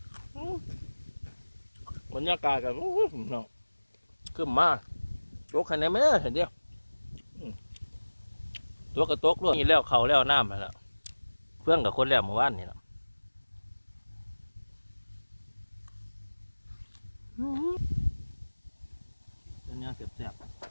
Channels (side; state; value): both; inverted; correlation -1.00